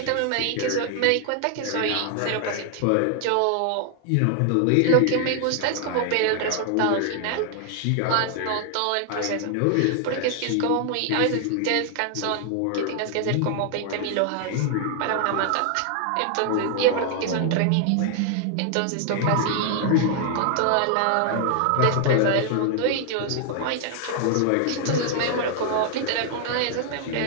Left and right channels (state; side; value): different; both; correlation 0.00